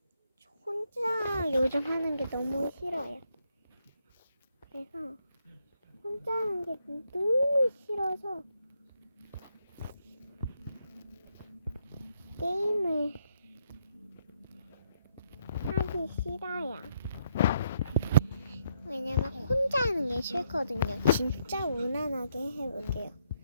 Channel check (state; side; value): inverted; both; correlation -0.76